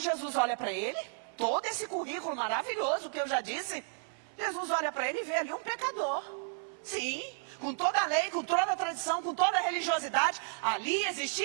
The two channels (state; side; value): silent; left; 56 dB below the other